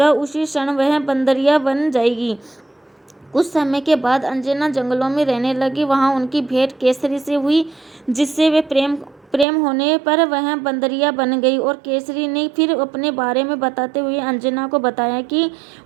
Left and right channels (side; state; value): left; drops out; at 9.5 s